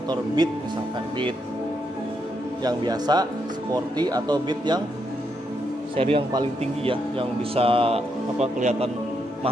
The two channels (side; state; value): both; normal; correlation 0.80